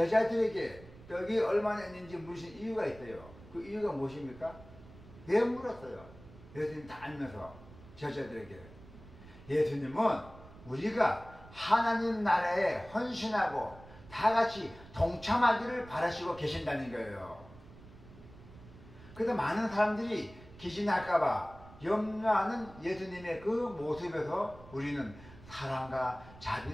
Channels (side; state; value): right; noise; rumble, 19 dB below the sound